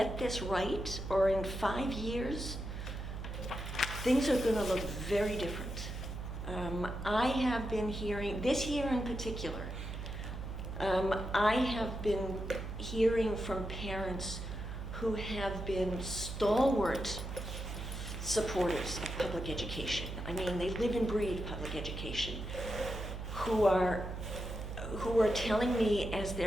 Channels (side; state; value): right; noise; hum, 7 dB below the sound